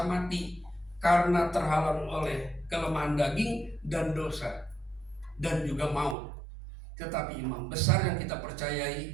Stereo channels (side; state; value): left; drops out; at 6.2 s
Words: mati karena terhalang oleh kelemahan daging dan dosa dan juga maut. Tetapi imam besar yang kita